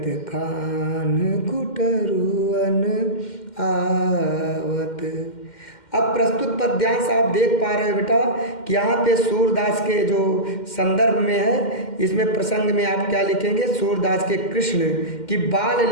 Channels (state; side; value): late; right; 2.1 ms